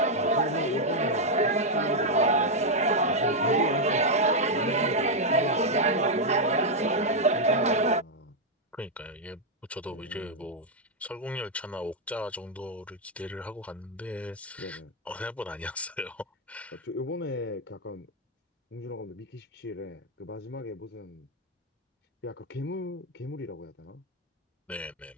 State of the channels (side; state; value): both; normal; correlation -0.01